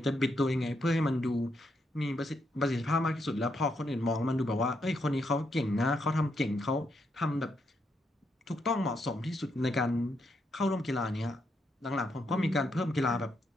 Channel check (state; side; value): normal; both; correlation 0.79